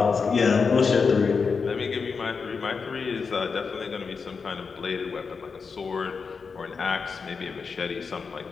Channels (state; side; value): quieter; right; 5.2 dB